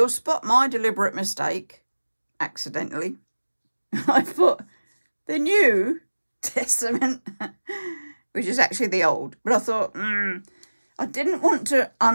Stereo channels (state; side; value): inverted; both; correlation -1.00